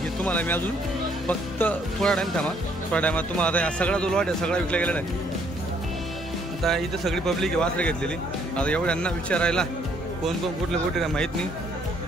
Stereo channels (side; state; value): both; normal; correlation 0.66